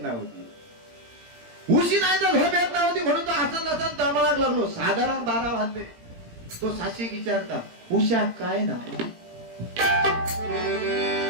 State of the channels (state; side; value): late; left; 17 ms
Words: नव्हती, उशी नाही तर झोप येत नव्हती म्हणून तो असं नसन तळमळाक लागलो. साधारण 12 वाजले. तो साक्षी विचारता उषा काय ना,